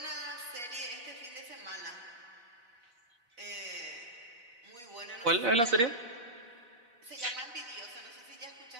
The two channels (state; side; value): late; left; 4.0 ms